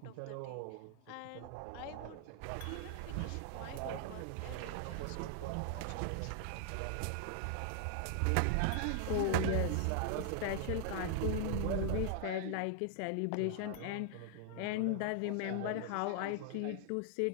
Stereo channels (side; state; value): both; different; correlation 0.00